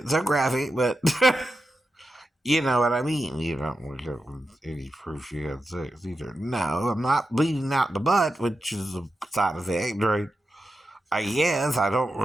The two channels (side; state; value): both; normal; correlation 0.90